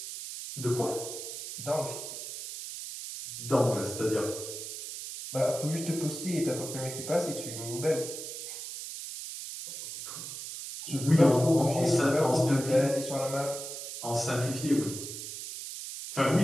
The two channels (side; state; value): right; noise; hiss, 8 dB below the sound